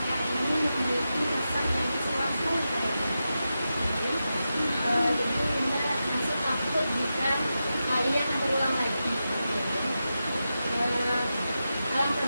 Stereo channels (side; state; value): both; inverted; correlation -0.90